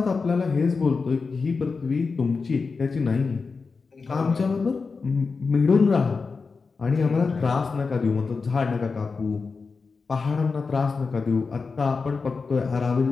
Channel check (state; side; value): quieter; right; 4.6 dB